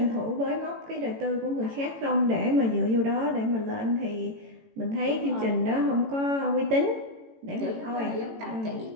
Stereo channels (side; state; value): left; late; 18 ms